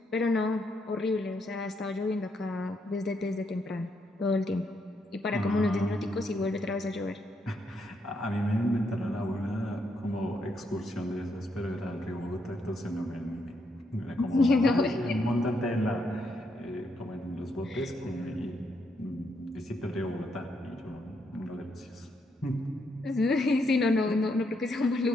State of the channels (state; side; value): normal; both; correlation 0.77